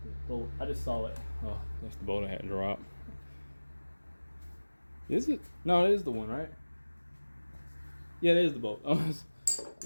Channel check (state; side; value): inverted; both; correlation -1.00